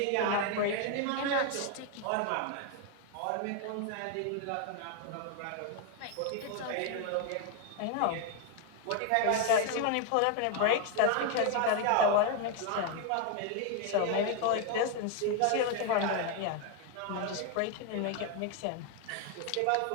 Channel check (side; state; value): both; different; correlation 0.01